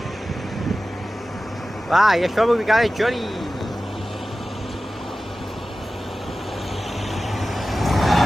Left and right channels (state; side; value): normal; both; correlation 0.95